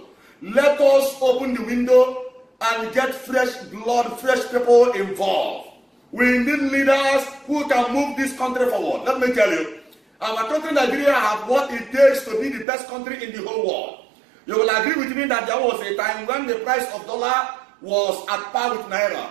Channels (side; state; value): left; drops out; at 12.7 s